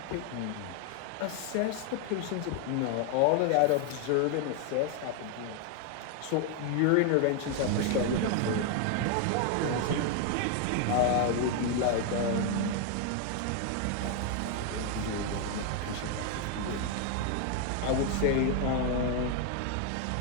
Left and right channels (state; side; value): different; both; correlation 0.01